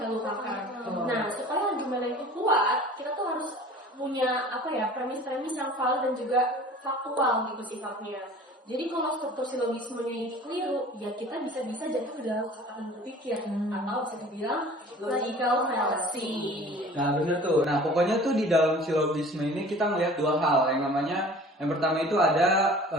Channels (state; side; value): normal; both; correlation 0.45